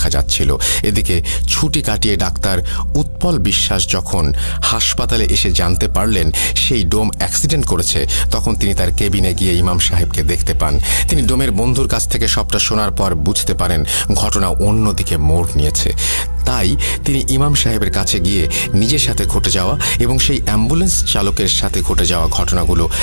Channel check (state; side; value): inverted; both; correlation -1.00